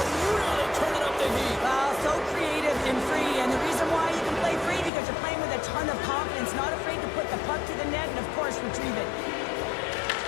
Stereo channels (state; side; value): drops out; right; at 4.9 s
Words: really turning up the heat. So creative and free, and the reason why you can play free because you're playing with a ton ton of confidence, not afraid to put the puck to the net and, of course, retrieve it.